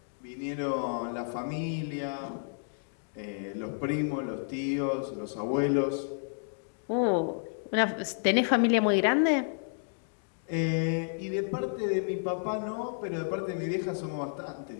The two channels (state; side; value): silent; right; digital silence